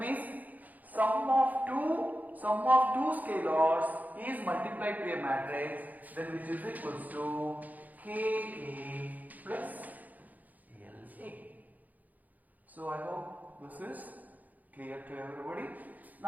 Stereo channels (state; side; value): late; left; 0.081 ms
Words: sum of two scalars is multiplied to a matrix, then which is equals to Ka plus La. So I hope this is clear to everybody.